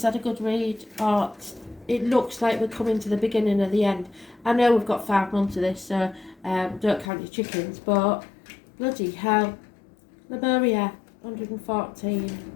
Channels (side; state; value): right; drops out; at 7.1 s